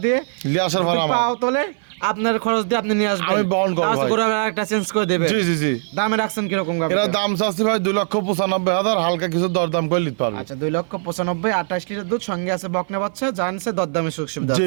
দিয়ে, লিয়ে আসার যদি ভাড়া আমার। পাও তোলে আপনার খরচ দিয়ে আপনি নিয়ে আসবেন। আমি বহন করবো ভাই। গরু একটা চেঞ্জ করে দেবে। জি জি জি, দামে রাখছেন কিরকম গাবি? এরা দাম চাচ্ছি ভাই 2,95,000, হালকা কিছু দরদাম করে নিতে পারবে। আচ্ছা, 2,95,000, 28 লিটার দুধ, সঙ্গে আছে বকনা বাচ্চা, জানছে দরদামে সুযোগ সুবিধা জি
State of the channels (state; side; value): silent; left; 56 dB below the other